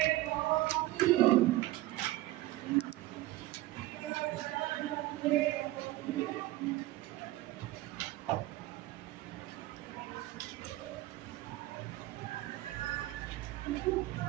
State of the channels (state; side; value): quieter; left; 17.1 dB